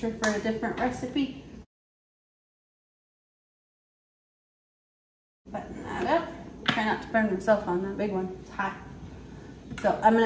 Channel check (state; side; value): identical; both; correlation 1.00